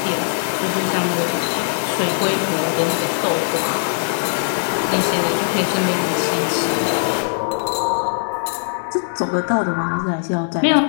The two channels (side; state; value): right; silent; digital silence